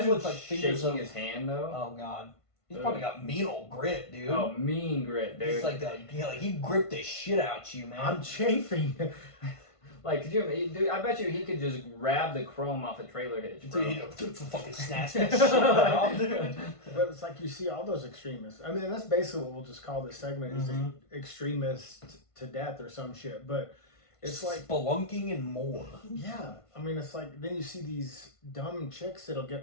look like fingers shaking of. his hand though? Oh god, he's Ugh. probably got mean old grip, dude. Oh, mean grit, dude. He's like he gripped the shit out you, man. I'm chafing. Like, could you, dude? I bet you he could just grab the chrome off a trailer hitch, bro. Dude, he fucking snatched that shit right off, dude. But it's like you see all those extremists. I mean, that's basically what we'll just call this segment is extremist to death or some shit. But it's like spelunking and more. yeah. I mean, it's like then you see these dumb chicks that'll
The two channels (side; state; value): right; late; 1.5 ms